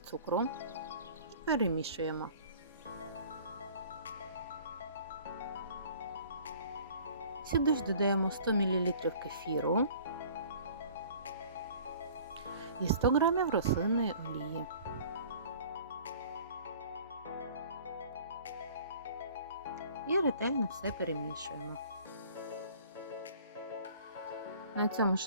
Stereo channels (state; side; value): inverted; both; correlation -0.49